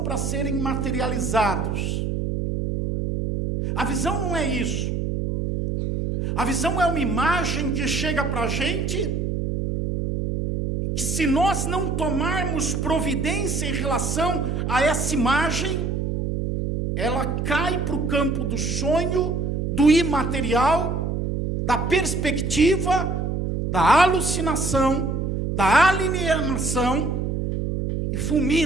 para serem materializados. A visão não é isso. A visão é uma imagem que chega para a gente, que se nós não tomarmos providência em relação a essa imagem, ela cai para o campo do sonho, do imaterial, da perspectiva, da alucinação, da alienação, e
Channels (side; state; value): right; noise; hum, 1 dB below the sound